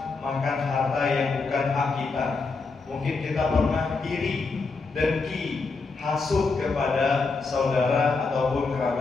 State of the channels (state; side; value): quieter; right; 4.2 dB